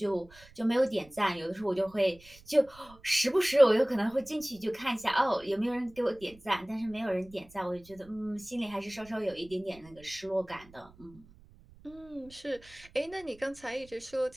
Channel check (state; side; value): noise; right; rumble, 24 dB below the sound